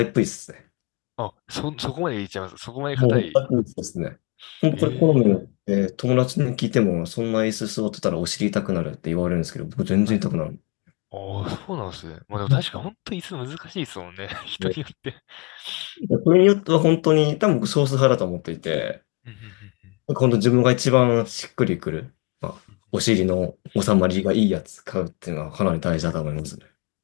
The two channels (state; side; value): quieter; right; 32.4 dB